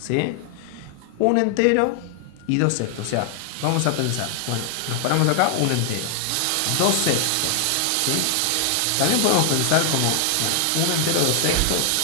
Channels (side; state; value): both; different; correlation 0.00